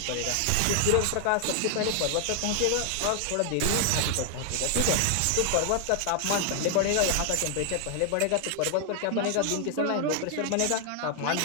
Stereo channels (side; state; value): both; different; correlation 0.00